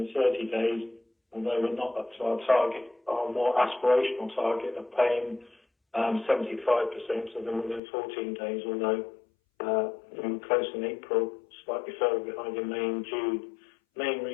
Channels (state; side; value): drops out; right; at 7.8 s